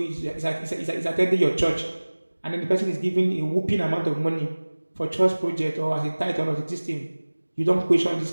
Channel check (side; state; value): both; inverted; correlation -1.00